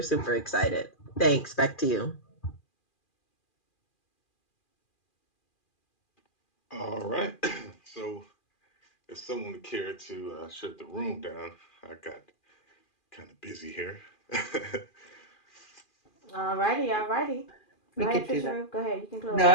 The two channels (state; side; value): late; right; 2.4 ms